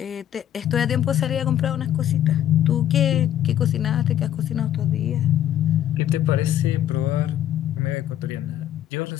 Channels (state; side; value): quieter; right; 11.4 dB